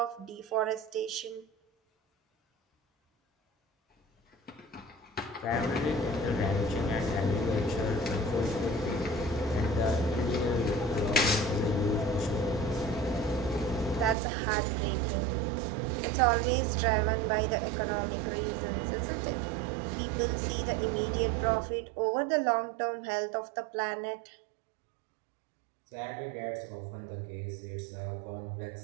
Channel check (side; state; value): left; drops out; at 14.2 s